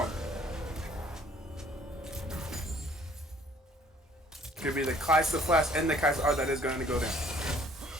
Could be the Kai'Sa flash and the Kai'Sa R that is going to go down.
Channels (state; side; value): normal; both; correlation 0.58